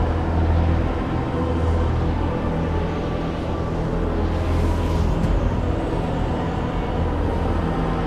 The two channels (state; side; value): identical; both; correlation 1.00